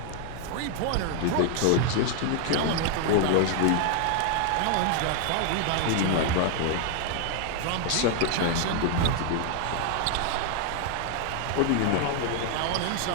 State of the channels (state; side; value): different; both; correlation 0.00